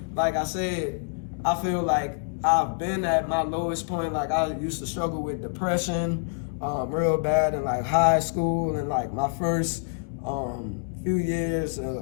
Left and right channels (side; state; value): right; silent; digital silence